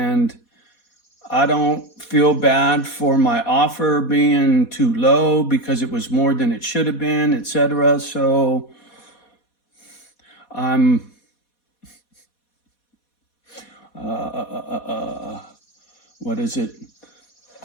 I don't feel bad for my offer being too low because it was more than it should have been, etc. So I'm, what is it?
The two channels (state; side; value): late; right; 4.2 ms